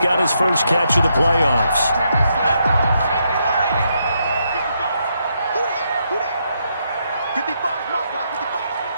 his first catch of the playoffs.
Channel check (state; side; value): inverted; both; correlation -0.78